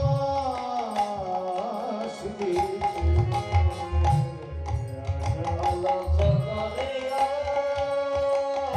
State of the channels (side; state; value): both; identical; correlation 1.00